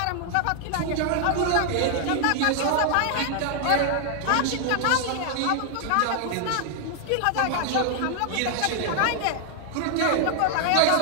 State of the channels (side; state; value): both; different; correlation 0.00